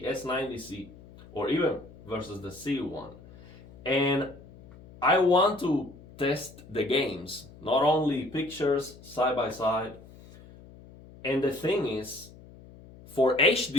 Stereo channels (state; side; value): noise; left; hum, 21 dB below the sound